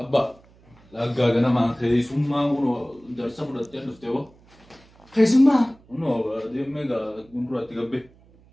Laga gana mah kayak semua uno darsa berat ya dufte wo. Kayak semua. Uno dia mega guntur hati gabe.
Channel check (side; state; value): right; noise; hum, 28 dB below the sound